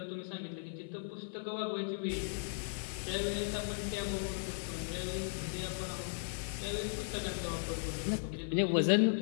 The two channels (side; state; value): right; silent; 53 dB below the other